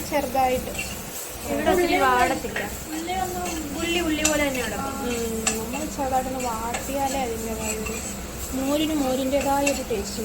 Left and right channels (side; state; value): both; identical; correlation 1.00